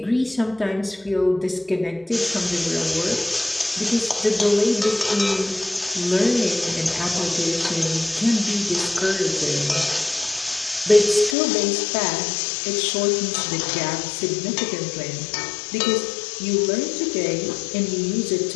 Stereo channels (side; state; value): right; drops out; at 11.4 s